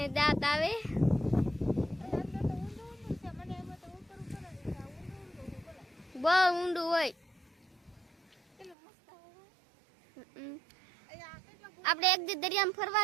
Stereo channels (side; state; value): left; drops out; at 8.8 s